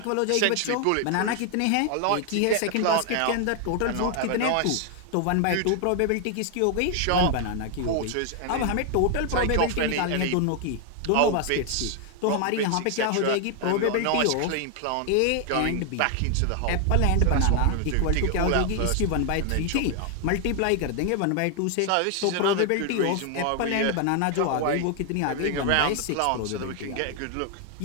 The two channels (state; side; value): different; both; correlation 0.00